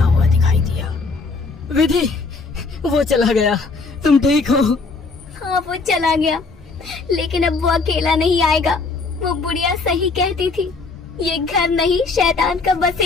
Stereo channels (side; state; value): right; quieter; 4.1 dB